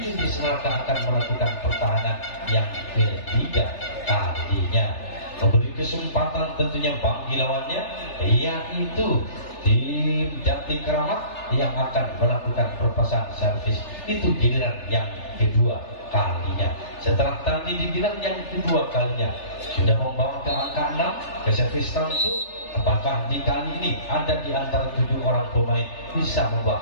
iblis neraka akan melakukan pertahanan yang ketiga kalinya, memberi kesempatan tentunya bagi lawannya yaitu tim Jati Kramat yang akan melakukan perpasan servis itu giliran yang kedua kalinya. Setelah tadi di giliran yang kedua kalinya sudah membawa ke angka 6 ke servis tentu, apakah di kali ini ada di antara 7 orang pemain bisa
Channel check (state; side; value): late; right; 3.4 ms